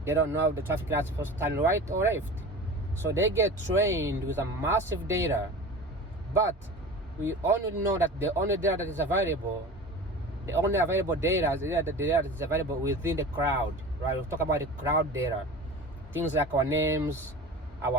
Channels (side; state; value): both; normal; correlation 0.35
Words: They don't know if the traffic lights are supposed to turn right or left. So they get trained with a massive data. But we only know that the only data that is available, the only available data is the data that is available within the crowd. Right? We'll talk about the crowd data. Things like our names,